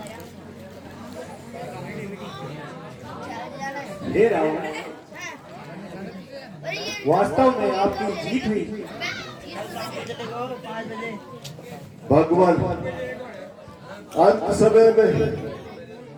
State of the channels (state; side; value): identical; both; correlation 1.00